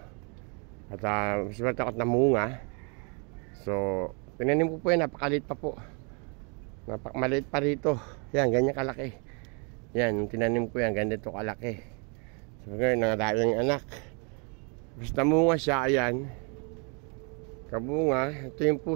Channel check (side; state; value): left; quieter; 35.2 dB